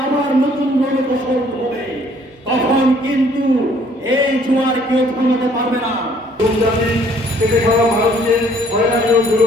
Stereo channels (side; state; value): both; normal; correlation 0.61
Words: আবার নতুন রণকৌশল হবে, তখন কিন্তু এই জোয়ার কেউ থামাতে পারবে না। জাতি থেকে খাওয়া ভারতকে হয়রানি ও